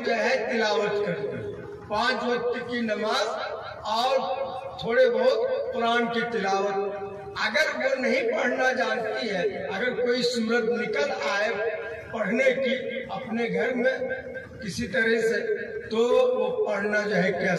جو ہے تلاوت کرتے 5 وقت کی نماز اور تھوڑے بہت قرآن کی تلاوت۔ اگر وہ نہیں پڑھنا جانتی ہے، اگر کوئی صورت نکل آئے پڑھنے کی اپنے گھر میں کسی طرح سے، تو وہ پڑھنا جو ہے کیا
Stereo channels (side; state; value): both; identical; correlation 1.00